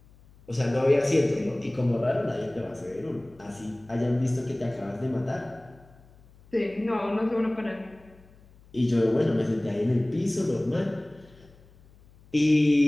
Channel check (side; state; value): left; noise; hum, 26 dB below the sound